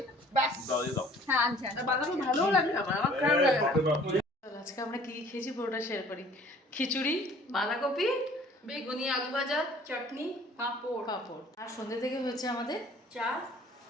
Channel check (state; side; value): normal; both; correlation 0.52